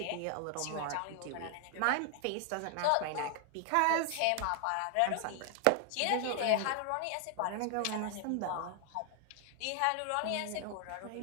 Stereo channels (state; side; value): different; both; correlation 0.00